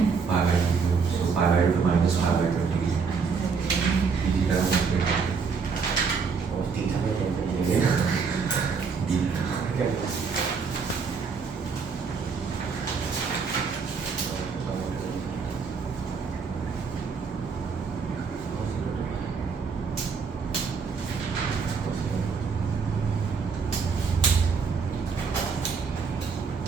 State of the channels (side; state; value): left; quieter; 5.4 dB